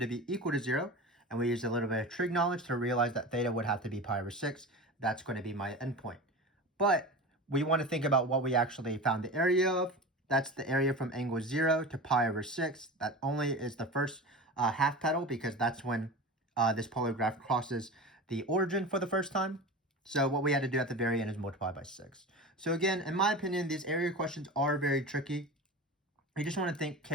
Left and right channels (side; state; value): both; normal; correlation 0.31